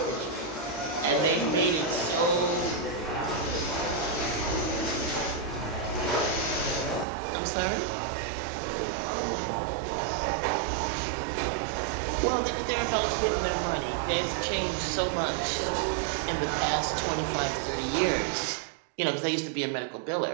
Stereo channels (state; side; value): drops out; left; at 7.1 s